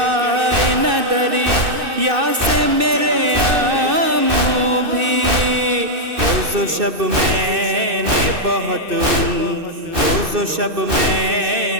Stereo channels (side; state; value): left; late; 2.6 ms